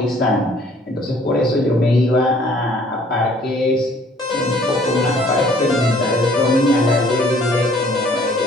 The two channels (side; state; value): both; normal; correlation 0.57